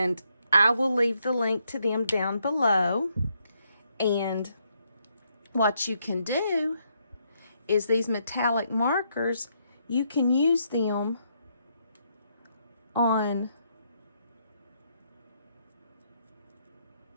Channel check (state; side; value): inverted; both; correlation -0.75